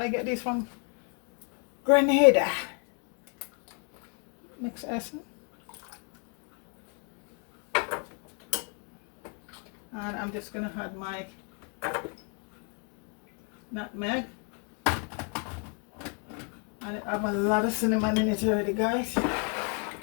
get these from Grenada. Mixed essence. And I'm just gonna add my nutmeg. And I have a lot of cinnamon in it already, guys.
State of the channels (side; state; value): right; quieter; 39.3 dB